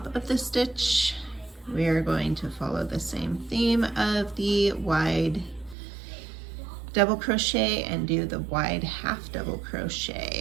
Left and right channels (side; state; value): left; drops out; at 5.8 s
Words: of the stitch. We are going to follow the same theme of the wide double crochet and do the wide half double